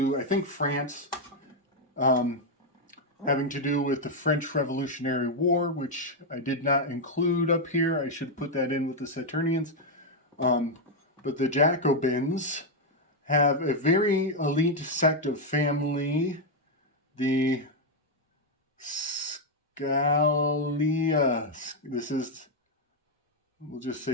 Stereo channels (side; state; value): both; normal; correlation 0.01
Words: I think, France, having to do with the French Revolutionary War, which I did not include up here. I should put that in with the Saturnians. But the Jacobins have a very elite sect of family, the Scalia. We'll just